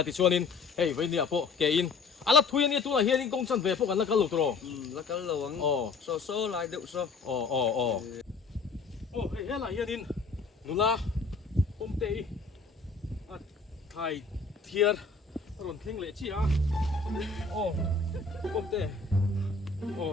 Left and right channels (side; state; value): right; quieter; 4.4 dB